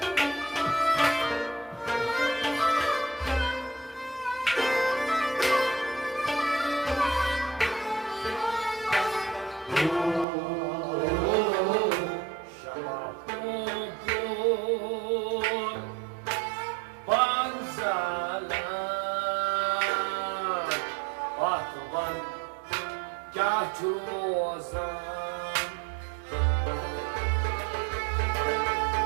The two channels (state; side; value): drops out; left; at 10.2 s